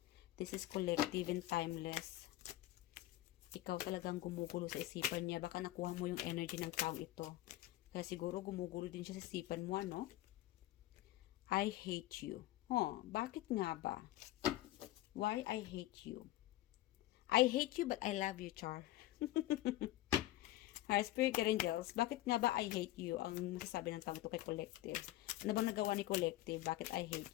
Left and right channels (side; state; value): right; quieter; 15.7 dB